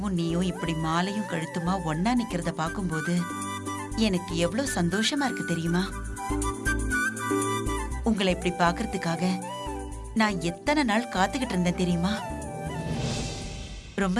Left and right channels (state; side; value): identical; both; correlation 1.00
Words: நீயும் இப்படி மாலையும் கழுத்துமா ஒன்னா நிக்கிறத பாக்கும்போது எனக்கு எவ்வளவு சந்தோஷமா இருக்கு தெரியுமா? உங்களை இப்படி பாக்குறதுக்காக நான் எத்தனை நாள் காத்துக்கிட்டு இருந்தேன் தெரியுமா?